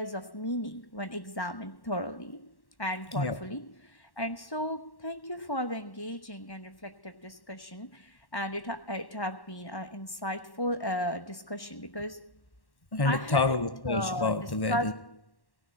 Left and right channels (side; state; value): right; late; 1.1 ms